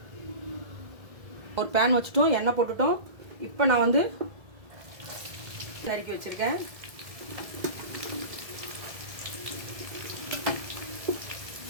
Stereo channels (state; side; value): late; left; 1.7 ms